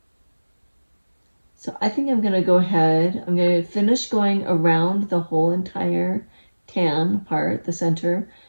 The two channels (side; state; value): both; inverted; correlation -1.00